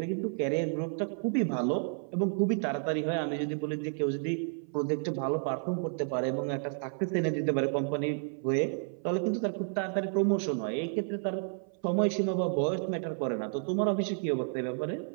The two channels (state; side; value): silent; left; 55 dB below the other